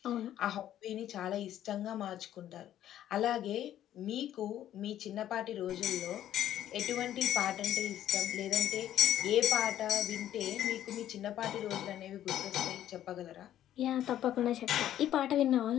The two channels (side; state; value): right; quieter; 11.8 dB